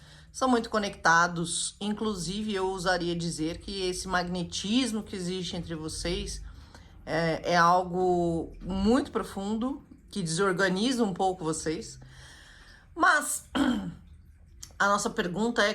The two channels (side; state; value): both; identical; correlation 1.00